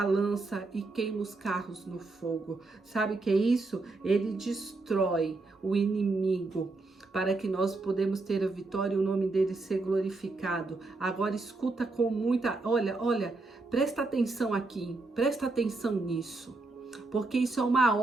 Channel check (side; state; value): left; quieter; 3.4 dB